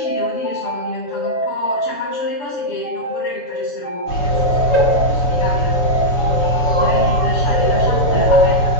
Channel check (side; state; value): right; late; 7.0 ms